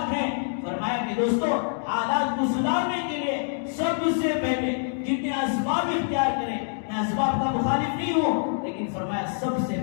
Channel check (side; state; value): right; silent; digital silence